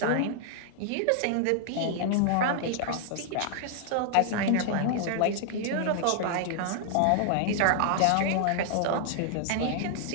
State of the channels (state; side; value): different; both; correlation -0.01